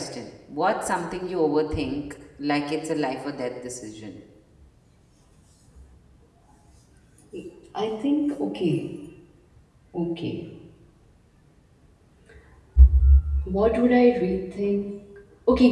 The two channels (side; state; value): both; identical; correlation 1.00